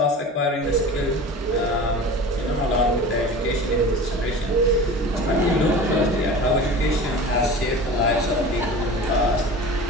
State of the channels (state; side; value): normal; both; correlation 0.36